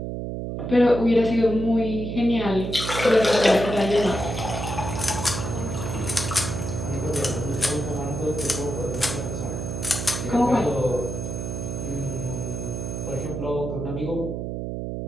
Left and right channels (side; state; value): right; noise; hum, 4 dB below the sound